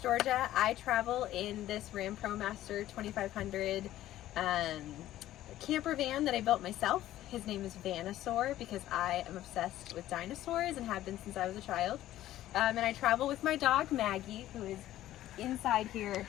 I travel in this Ram ProMaster 2500 camper van that I built myself. His name is Vanosaur because I am obsessed with dinosaurs and have been since I was a child. And I travel with my dog Maggie, who is inside here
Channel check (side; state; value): right; quieter; 13.9 dB